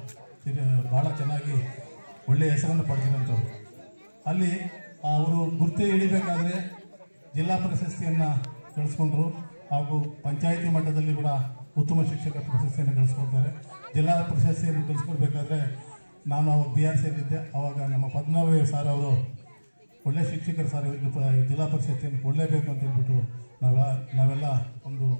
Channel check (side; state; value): both; inverted; correlation -1.00